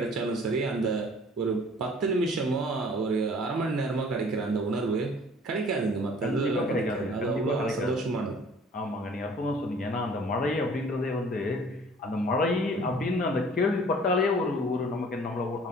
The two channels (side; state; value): both; normal; correlation 0.52